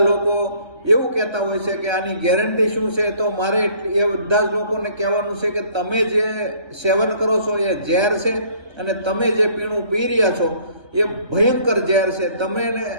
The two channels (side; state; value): left; late; 1.3 ms